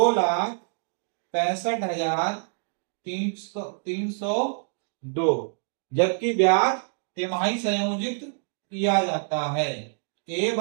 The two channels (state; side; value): silent; left; digital silence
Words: जबकि ब्याज तिमाही संयोजित किया जाता है। A